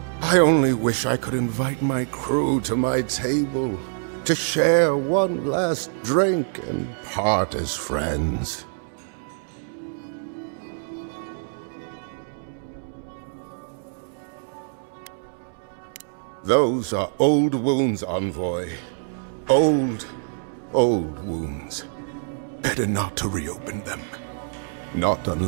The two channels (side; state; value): left; silent; 62 dB below the other